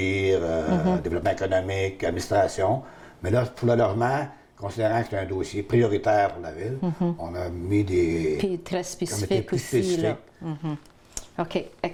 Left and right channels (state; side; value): identical; both; correlation 1.00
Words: développement économique, administration. Mais là, pour le logement, considérant que c'est un dossier prioritaire pour la ville, on a mis des puis très spécifiques aussi. Là. OK,